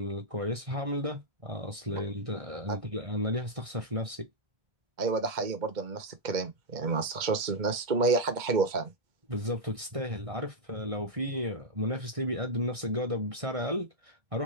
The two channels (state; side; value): late; left; 1.6 ms